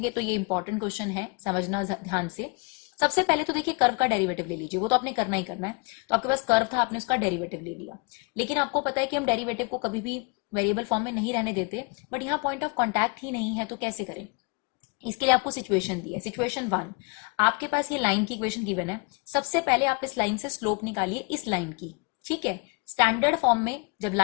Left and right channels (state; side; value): quieter; right; 31.3 dB